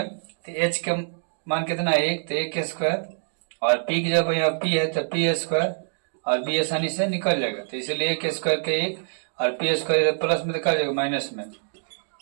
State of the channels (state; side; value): silent; left; digital silence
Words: तो h का मान कितना है 1, तो 1² और p की जब यहाँ p है तो p² और b आसानी से निकल जाएगा, तो इसलिए 1² के 1 और p² प्लस में निकल जाएगा माइनस में